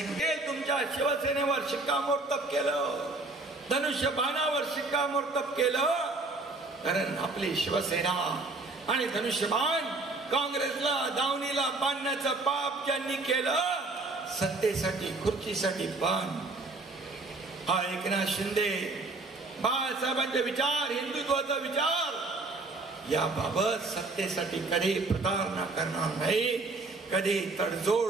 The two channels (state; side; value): quieter; left; 3.3 dB